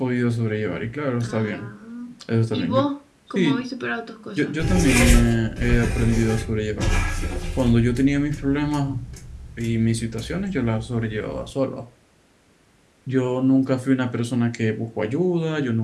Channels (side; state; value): both; identical; correlation 1.00